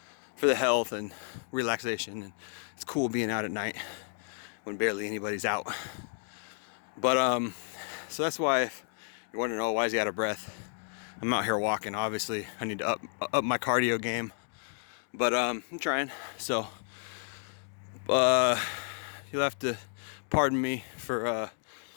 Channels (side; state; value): right; silent; 57 dB below the other